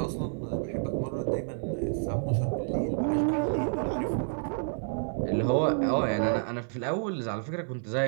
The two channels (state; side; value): silent; left; digital silence